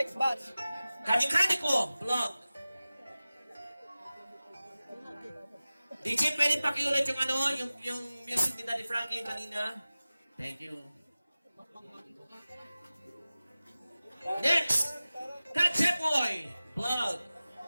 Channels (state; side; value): inverted; both; correlation -0.97